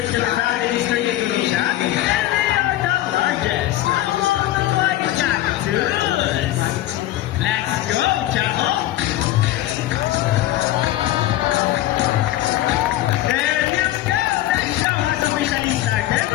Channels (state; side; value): quieter; right; 14.6 dB